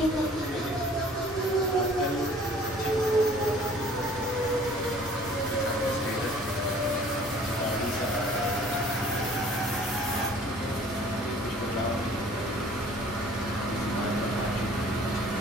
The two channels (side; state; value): both; normal; correlation 0.52